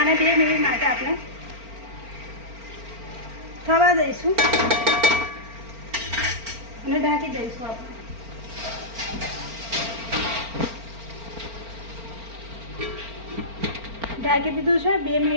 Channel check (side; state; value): left; late; 4.4 ms